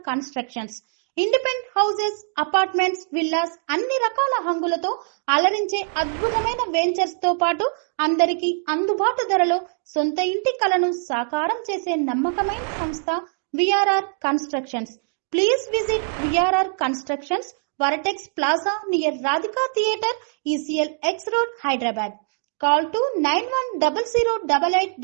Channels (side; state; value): left; silent; digital silence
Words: constructions. Independent houses, apartments, villas అన్ని రకాల హంగులతో అలరించే అద్భుతమైన వెంచర్స్ తో పాటు అందరికీ అందుబాటు ధరలో సొంత ఇంటి కలను సాకారం చేసే నమ్మకమైన సంస్థ VRR constructions. Please visit VRR constructions, Varatex Plaza near Radhika Theatre, ECL X Road, Hyderabad. Call to